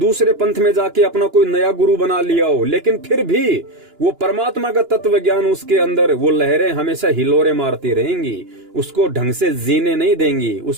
पंथ में जाके अपना कोई नया गुरु बना लिया हो, लेकिन फिर भी वो परमात्मा का तत्व ज्ञान उसके अंदर, वो लहरें हमेशा हिलोरे मारती रहेंगी, उसको ढंग से जीने नहीं देंगी,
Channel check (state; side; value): late; left; 2.9 ms